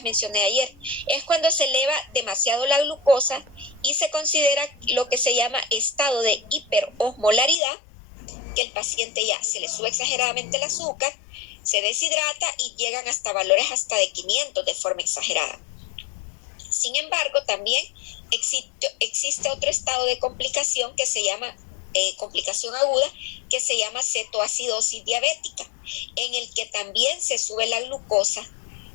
mencioné ayer. Es cuando se eleva demasiado la glucosa y se considera lo que se llama estado de hiperosmolaridad, que el paciente ya se le sube exageradamente el azúcar, se deshidrata y llegan hasta valores hasta de 500 de forma exagerada. Sin embargo, también existe otro estado de complicación que se llama complicación aguda, que se llama cetoacidosis diabética, en el que también se sube la glucosa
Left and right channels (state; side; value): drops out; right; at 7.6 s